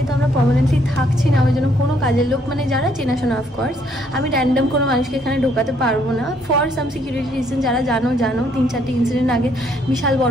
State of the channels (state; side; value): normal; both; correlation 0.68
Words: আমরা পার্মানেন্টলি থাকছি না, ওই জন্য কোনো কাজের লোক মানে যারা চেনাশোনা, অফকোর্স আমি র্যান্ডম কোনো মানুষকে এখানে ঢোকাতে পারবো না ফর সাম সিকিউরিটি রিজন। যারা জানো 3-4টি ইনসিডেন্ট আগে বিশাল